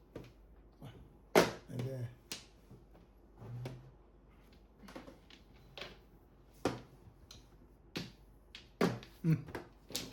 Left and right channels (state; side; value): identical; both; correlation 1.00